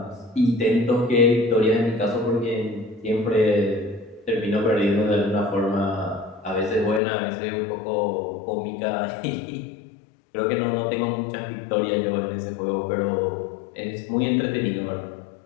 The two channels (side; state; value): right; drops out; at 7.0 s